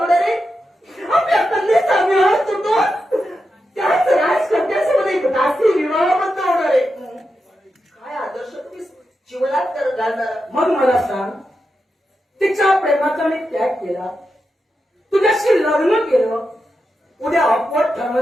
आहे. आपल्या कन्येचा विवाह तुटून त्याच राजकन्यासोबत एक दासी विवाहबद्ध होणार आहे. काय आदर्श तुम्ही जीवनात घालणार? मग मला सांग, तिच्या प्रेमाचा मी त्याग केला, तुझ्याशी लग्न केलं, उद्या अपवाद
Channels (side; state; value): both; normal; correlation 0.88